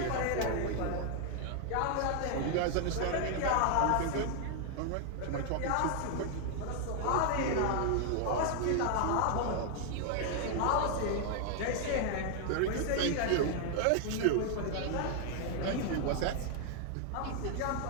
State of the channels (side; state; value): both; different; correlation 0.00